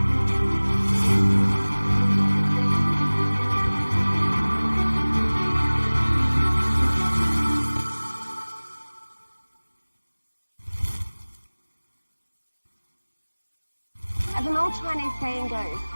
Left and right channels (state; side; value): inverted; both; correlation -1.00